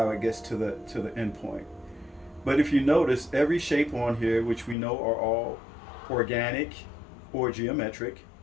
it gets to the end point. But if you notice, every shape on here, which we know are all organic or geometric,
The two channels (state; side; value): drops out; right; at 4.8 s